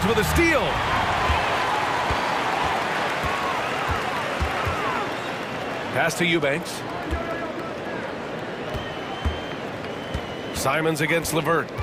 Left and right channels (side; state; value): both; identical; correlation 1.00